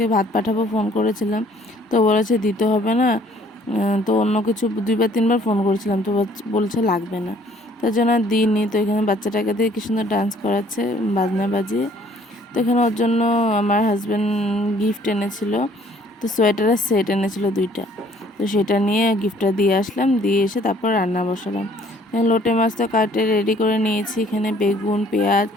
ভাত পাঠাবো ফোন করেছিলাম, তো বলেছে দিতে হবে না। তো অন্য কিছু 2-3বার ফোন করেছিলাম, তো বলছে লাগবে না, তার জন্য আর দিইনি। তো এখানে বাচ্চাটাকে দিয়ে কি সুন্দর ডান্স করাচ্ছে বাজনা বাজিয়ে। তো এখানে ওর জন্য আমার হাজব্যান্ড গিফট এনেছিল, তো সোয়েটারের সেট এনেছিল 2টা, তো সেটা নিয়ে গিফটটা দিয়ে আসলাম, দিয়ে এসে তারপর রান্না বসালাম। লোটে মাছ তো কাটে রেডি করে নিয়েছি, এখানে বেগুন, পেঁয়াজ,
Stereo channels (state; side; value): normal; both; correlation 0.59